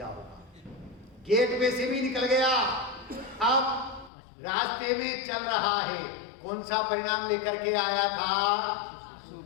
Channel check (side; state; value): right; drops out; at 4.1 s